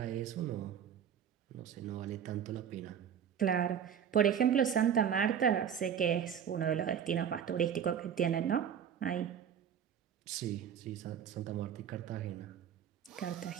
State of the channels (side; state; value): left; quieter; 8.5 dB